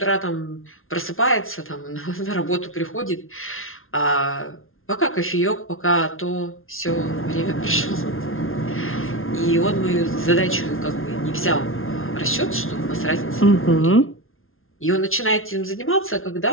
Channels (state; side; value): late; right; 0.61 ms